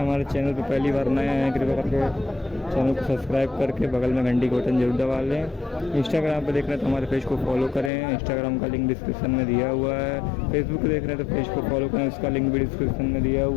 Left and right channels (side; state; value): right; drops out; at 7.9 s